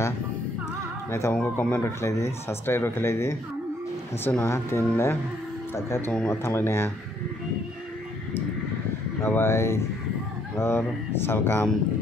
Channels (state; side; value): normal; both; correlation 0.68